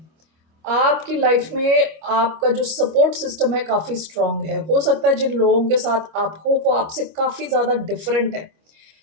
आपकी लाइफ में आपका जो सपोर्ट सिस्टम है काफी स्ट्रांग है। हो सकता है जिन लोगों के साथ आप हो वो आपसे काफी ज्यादा डिफरेंट है,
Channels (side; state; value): left; late; 25 ms